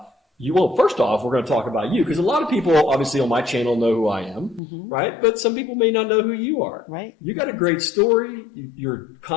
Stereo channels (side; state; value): right; drops out; at 4.6 s